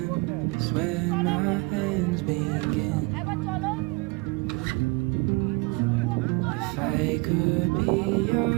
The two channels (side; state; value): left; quieter; 26.2 dB